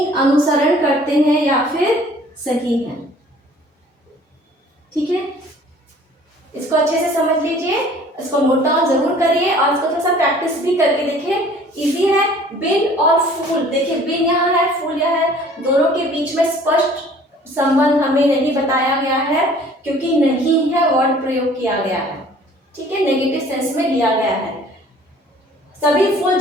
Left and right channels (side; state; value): both; normal; correlation 0.52